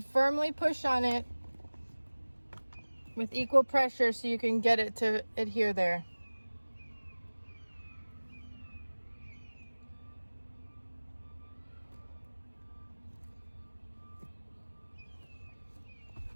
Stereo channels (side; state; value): both; inverted; correlation -1.00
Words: firmly push on it with equal pressure so you can get it to adhere there.